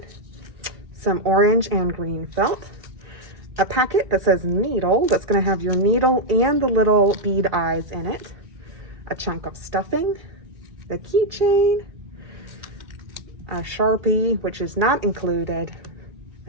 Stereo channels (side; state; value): left; late; 2.3 ms